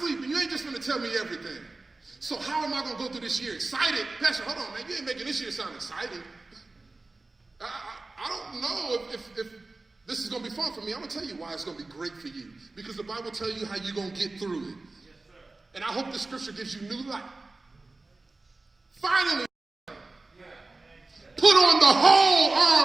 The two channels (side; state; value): left; quieter; 3.3 dB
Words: You ain't just going to tell me everything. So how am I going to go through this year excited? Pastor, hold on, man. You ain't making this year sound exciting. I don't know if this is going to be fun for me. I'm going to tell you why it's going to be great for you. Because the Bible tells you how you're going to get through it. Yes, sir. And I hope the scripture gives you new life. Finally, put on the whole